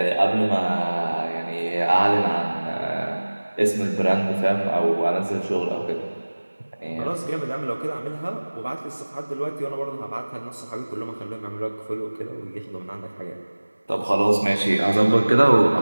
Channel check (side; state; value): both; inverted; correlation -1.00